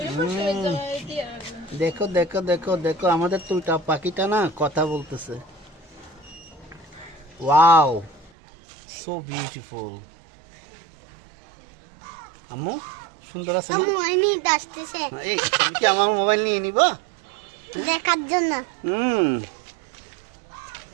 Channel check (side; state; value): left; drops out; at 8.3 s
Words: দেখো দেখো দেখো দেখো, আমাদের তুইটা পাখিটা না কথা বলতেছে। Wow, so beautiful. আম্মু সুন্দর আছে না? আম্মু আইনি আসতেছে এই তুমি কি আমার মোবাইল নিয়ে নিবা? দেখার জন্য।